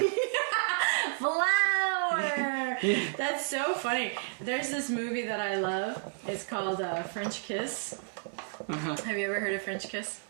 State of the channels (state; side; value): silent; left; digital silence